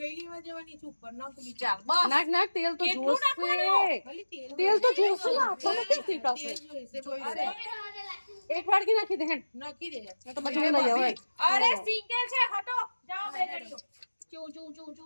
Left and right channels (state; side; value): inverted; both; correlation -1.00